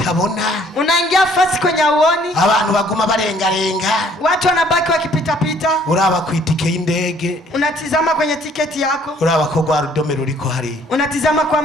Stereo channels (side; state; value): both; normal; correlation 0.60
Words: tabona. Unaingia fasi kwenye uoni. Abantu baguma barenga. Watu wanabaki wakipita pita. Uraba ku itike y'indege. Unatizama kwenye tiketi yako. Uraba ko gwa rudome ruriko hari. Unatizama